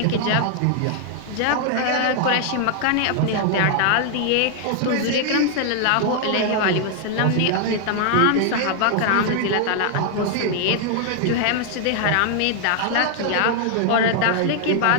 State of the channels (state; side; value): different; both; correlation 0.00